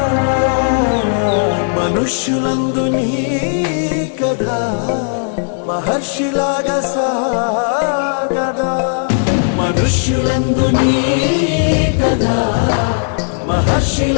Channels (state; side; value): silent; right; digital silence